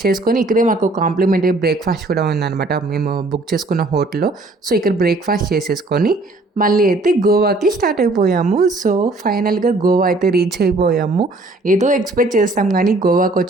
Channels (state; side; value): quieter; left; 3.0 dB